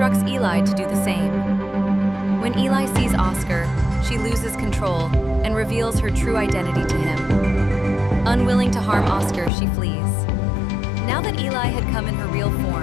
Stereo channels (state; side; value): drops out; right; at 9.5 s